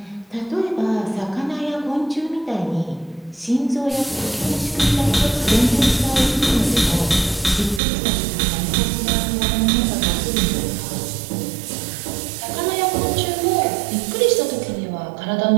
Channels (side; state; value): left; drops out; at 7.8 s